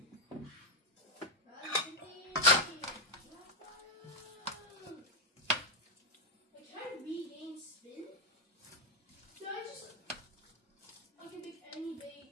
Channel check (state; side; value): normal; both; correlation 0.01